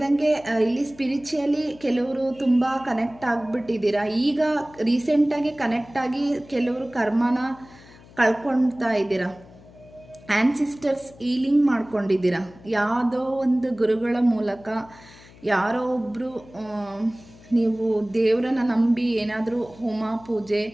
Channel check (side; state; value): left; noise; hum, 23 dB below the sound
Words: ಇಲ್ಲಿ ಸ್ಪಿರಿಚುಯಲಿ ಕೆಲವರು ತುಂಬ ಕನೆಕ್ಟ್ ಆಗಿಬಿಟ್ಟಿದ್ದೀರಾ. ಈಗ ರೀಸೆಂಟಾಗಿ ಕನೆಕ್ಟ್ ಆಗಿ ಕೆಲವರು ಕರ್ಮನ ಕಳ್ಕೊಳ್ತಾ ಇದ್ದೀರಾ. ಆ್ಯನ್ಸಿಸ್ಟರ್ಸ್ ಹೀಲಿಂಗ್ ಮಾಡ್ಕೊಂಡಿದ್ದೀರಾ. ಯಾವುದೋ ಒಂದು ಗುರುಗಳ ಮೂಲಕ ಯಾರೋ ಒಬ್ಬರು ನೀವು ದೇವರನ್ನ ನಂಬಿ ಏನಾದರೂ ಹೋಮ ಪೂಜೆ